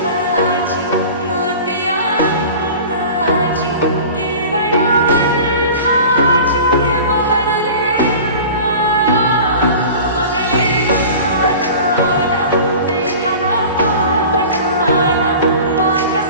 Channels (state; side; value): inverted; both; correlation -0.38